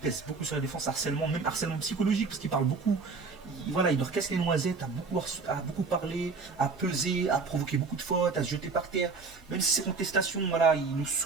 pèse beaucoup sur la défense, même harcèlement psychologique parce qu'il parle beaucoup. Voilà, il leur casse les noisettes, à beaucoup parler, à peser, à provoquer beaucoup de fautes, à se jeter par terre. Même si ces contestations, voilà, il nous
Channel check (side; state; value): left; quieter; 4.5 dB